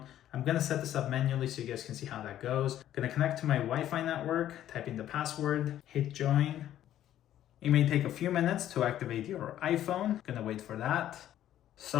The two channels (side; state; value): right; quieter; 11.9 dB